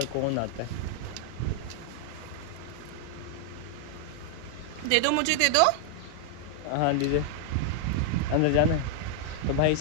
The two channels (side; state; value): both; different; correlation 0.00